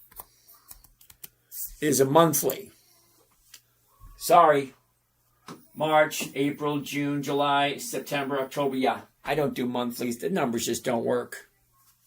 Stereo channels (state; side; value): identical; both; correlation 1.00